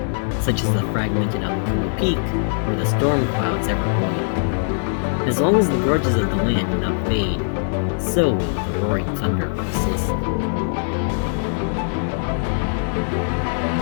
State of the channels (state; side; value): silent; right; digital silence